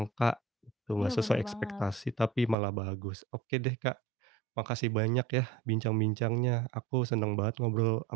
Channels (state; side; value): drops out; left; at 2.6 s